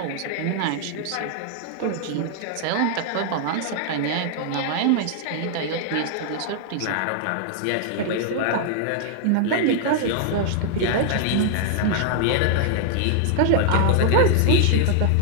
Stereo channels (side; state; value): both; different; correlation 0.00